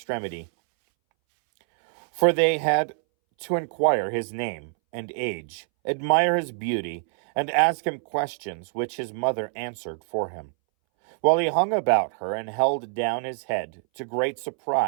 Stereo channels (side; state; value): left; silent; 61 dB below the other